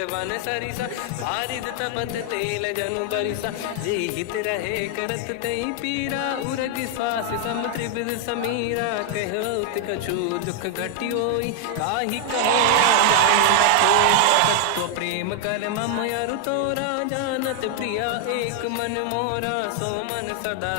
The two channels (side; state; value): both; different; correlation 0.00